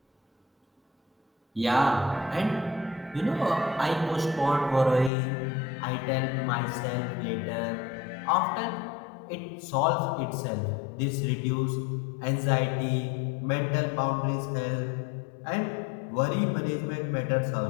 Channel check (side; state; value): right; drops out; at 5.1 s